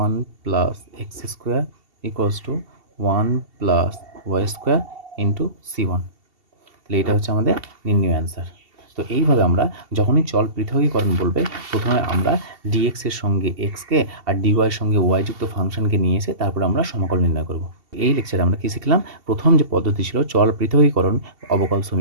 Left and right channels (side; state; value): left; late; 2.7 ms